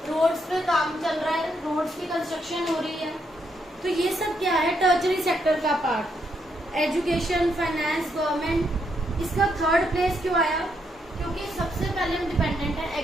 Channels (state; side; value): normal; both; correlation 0.77